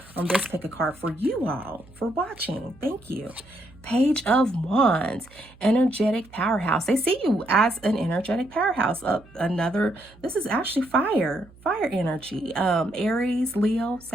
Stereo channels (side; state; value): right; noise; hum, 25 dB below the sound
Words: pick a card for you all for watching. Thank you. Page of Wands, energetic powerhouse. They see you as an energetic powerhouse. This is actually fire energy. Aries, Leo,